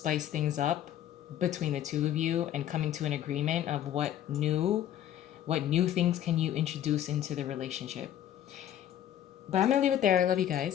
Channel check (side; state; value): right; quieter; 11.2 dB